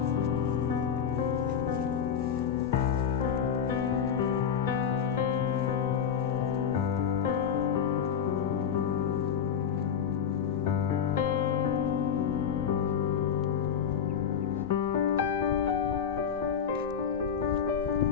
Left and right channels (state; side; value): quieter; right; 7.7 dB